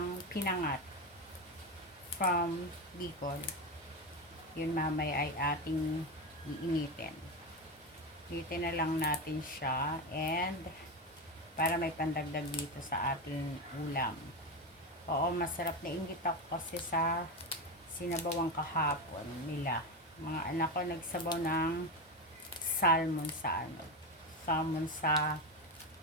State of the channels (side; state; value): both; normal; correlation 0.16